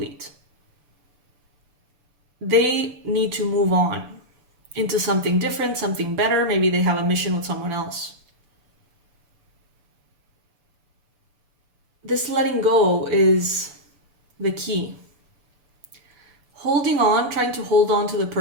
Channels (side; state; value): left; late; 6.9 ms